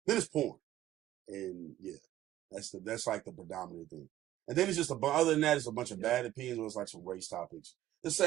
Then it's porn, and yeah, that's like the predominant thing. And then it's just other than that, it's a bunch of bad opinions. Where it's like some race topics, the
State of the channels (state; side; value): quieter; left; 13.8 dB